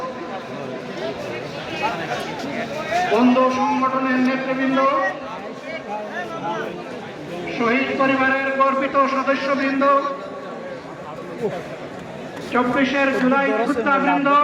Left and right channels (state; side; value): identical; both; correlation 1.00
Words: বন্ধু সংগঠনের নেতৃবৃন্দ, শহীদ পরিবারের গর্বিত সদস্যবৃন্দ, 24 জুলাই যোদ্ধাবৃন্দ,